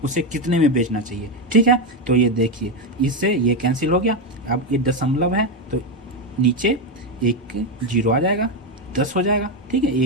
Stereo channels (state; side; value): normal; both; correlation 0.08